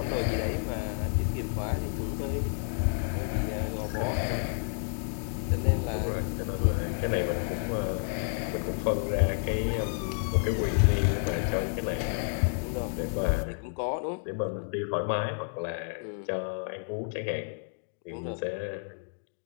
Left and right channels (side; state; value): right; silent; digital silence